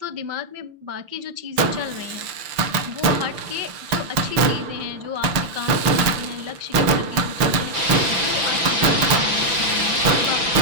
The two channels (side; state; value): left; late; 5.9 ms